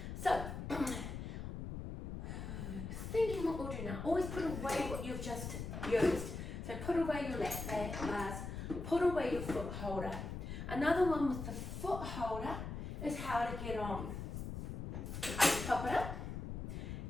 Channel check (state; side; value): noise; left; rumble, 6 dB below the sound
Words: So, thinking what we'll do now, always put away what you've just used. So put away your lap bars, put away your foot holder. Another one with the foot holder is how to get on. Pop it up.